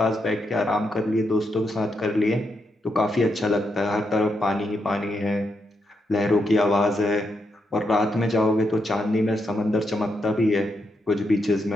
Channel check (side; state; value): both; normal; correlation 0.82